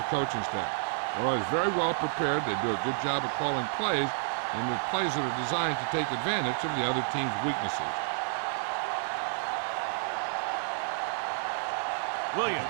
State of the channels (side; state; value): left; silent; digital silence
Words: coaching staff. They're always very well prepared. They do a good job of calling plays, and the plays that are designed to take advantage of the other team's weaknesses. Williams